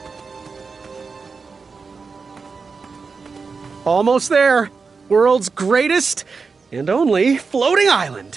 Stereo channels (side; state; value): left; quieter; 4.8 dB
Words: Almost there. World's greatest and only floating island.